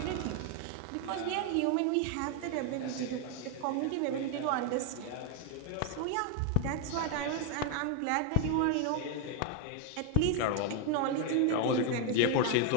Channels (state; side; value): different; both; correlation 0.01